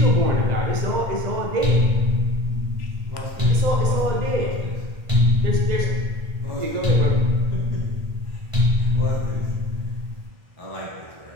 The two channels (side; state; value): left; late; 1.9 ms